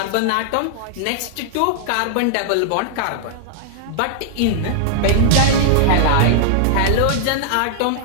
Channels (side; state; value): both; different; correlation -0.01